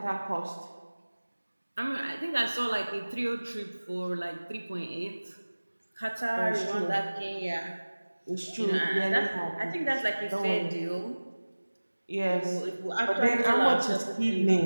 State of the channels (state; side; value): inverted; both; correlation -1.00